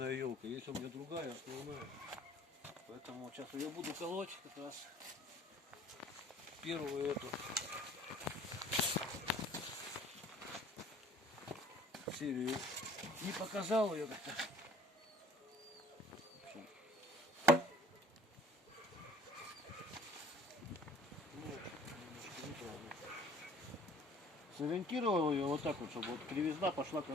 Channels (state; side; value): normal; both; correlation 0.52